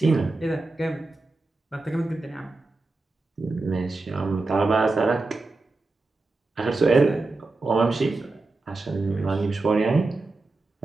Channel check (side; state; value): left; quieter; 3.4 dB